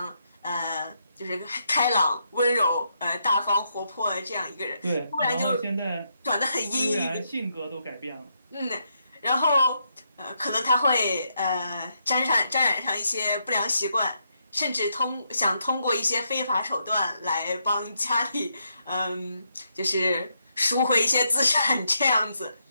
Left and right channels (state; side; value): inverted; both; correlation -0.79